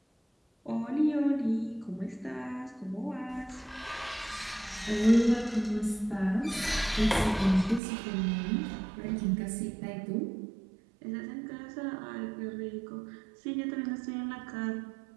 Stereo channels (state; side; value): drops out; left; at 7.8 s